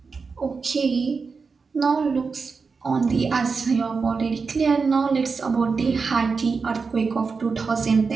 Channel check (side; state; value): left; quieter; 4.9 dB